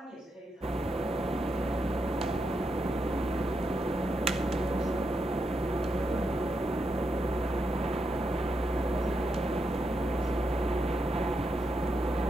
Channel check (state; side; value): normal; both; correlation 0.83